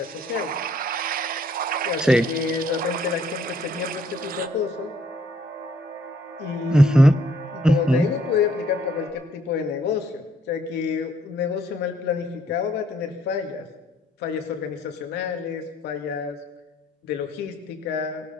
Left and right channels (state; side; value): normal; both; correlation 0.65